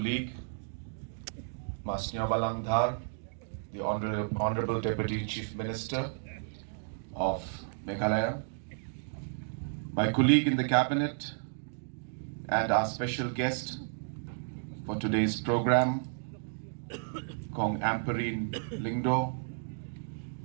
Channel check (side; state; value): left; silent; digital silence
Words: Masnya Balangdhar, the Honorable Deputy Chief Minister of Meghalaya, my colleague in the Cabinet, and our special guest for today's program, Kong Amperine Lingdo,